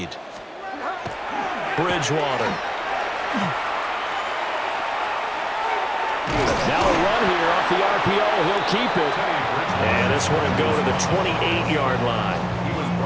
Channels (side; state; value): both; identical; correlation 1.00